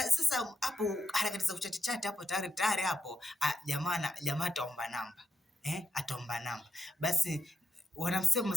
sasa hapo harakati za kuchat hapo tayari hapo jamaa ataomba namba. Ataomba namba. Basi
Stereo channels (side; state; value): both; normal; correlation 0.84